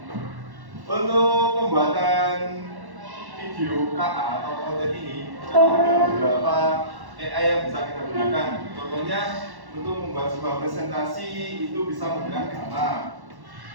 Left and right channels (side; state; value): left; late; 1.1 ms